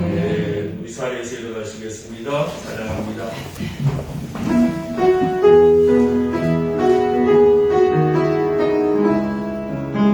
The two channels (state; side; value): identical; both; correlation 1.00